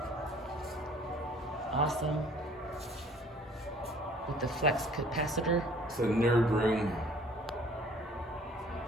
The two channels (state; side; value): normal; both; correlation 0.53